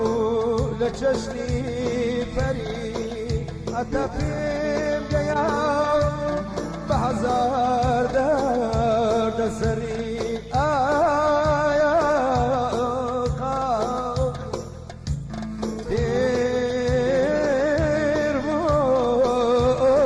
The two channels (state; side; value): identical; both; correlation 1.00